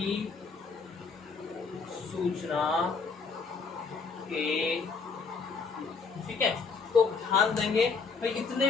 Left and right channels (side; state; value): right; quieter; 4.9 dB